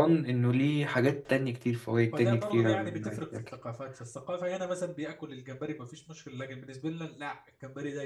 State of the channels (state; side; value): identical; both; correlation 1.00